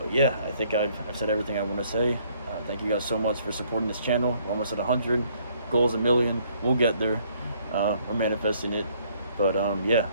yeah, I think I've said everything I want to say. Thank you guys so much for supporting this channel. We're almost at 100. Goal's 1 million. We'll get there. We're manifesting it. But yeah,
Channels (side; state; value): both; inverted; correlation -0.65